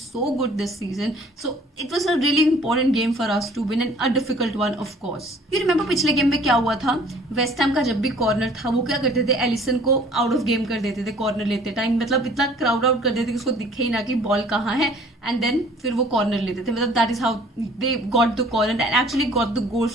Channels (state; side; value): normal; both; correlation 0.54